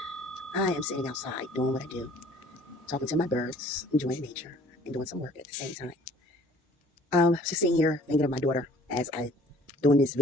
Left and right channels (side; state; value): both; normal; correlation 0.54